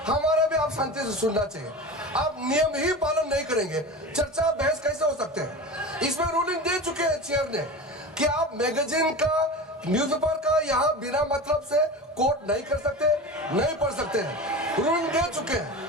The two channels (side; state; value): both; normal; correlation 0.30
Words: हमारा भी आप शांति से सुनना चाहिए। आप नियम ही पालन नहीं करेंगे, चर्चा बहस कैसे हो सकते हैं? इसमें रूलिंग दे चुके हैं चेयर ने कि आप मैगजीन का, न्यूज़पेपर का यहाँ बिना मतलब से कोट नहीं कर सकते, नहीं पढ़ सकते हैं। रूलिंग दे चुके हैं।